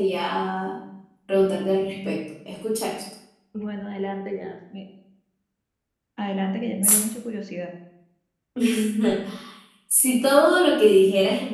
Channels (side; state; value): both; identical; correlation 1.00